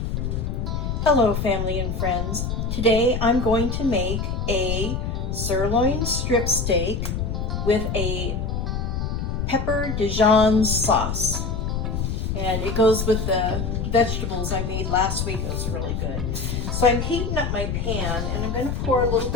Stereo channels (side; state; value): left; noise; rumble, 2 dB below the sound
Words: Hello family and friends. Today I'm going to make a sirloin strip steak with a pepper Dijon sauce. And it goes with the vegetables I made last week. It was really good. So I'm heating up my pan and I'm going to pour a little